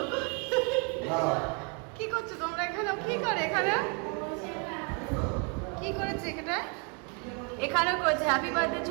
কি করছো তোমরা এখানে? কি করে এখানে? কি করেছে এখানে? এখানেও করেছে হ্যাপি বার্থডে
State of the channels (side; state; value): left; quieter; 34.7 dB